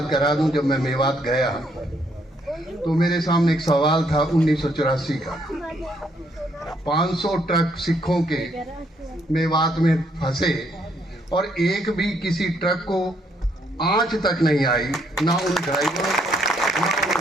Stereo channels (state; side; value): normal; both; correlation 0.71